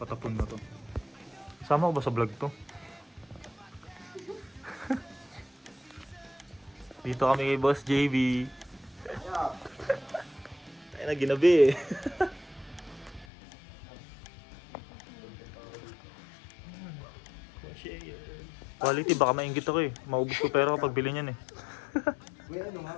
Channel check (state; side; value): drops out; right; at 13.2 s